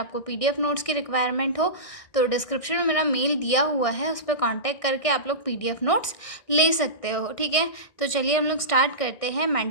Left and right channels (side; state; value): right; late; 1.6 ms